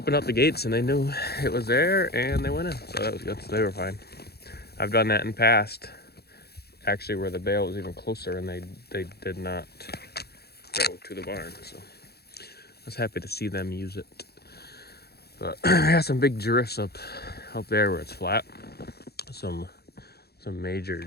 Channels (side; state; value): right; late; 0.46 ms